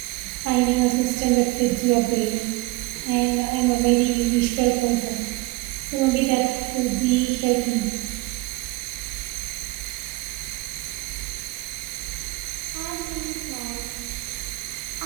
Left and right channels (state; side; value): quieter; left; 21.9 dB